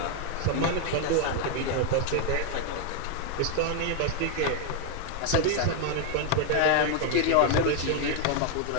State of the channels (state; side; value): different; both; correlation 0.01